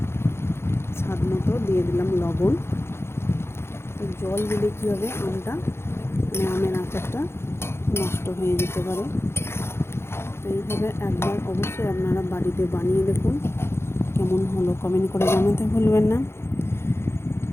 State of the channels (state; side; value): late; right; 0.12 ms